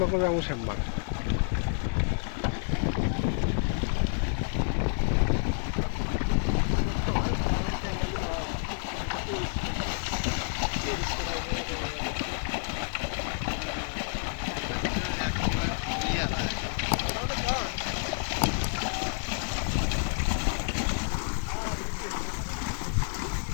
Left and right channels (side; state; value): right; silent; digital silence